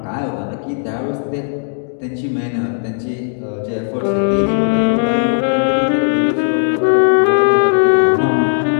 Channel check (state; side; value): silent; right; digital silence